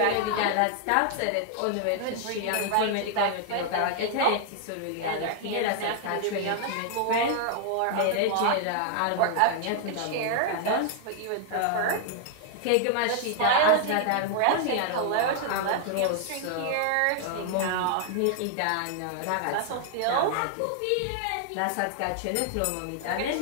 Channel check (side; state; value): both; different; correlation 0.00